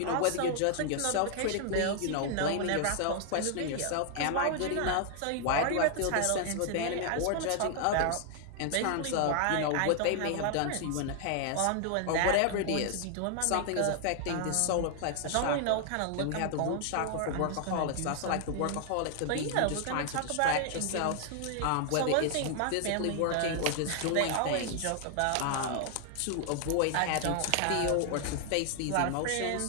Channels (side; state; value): both; different; correlation 0.00